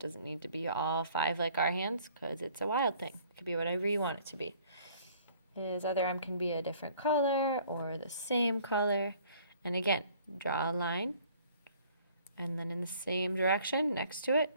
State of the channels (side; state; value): both; inverted; correlation -0.56